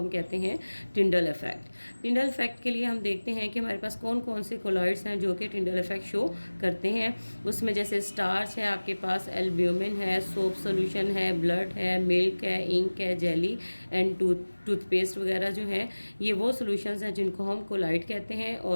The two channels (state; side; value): inverted; both; correlation -1.00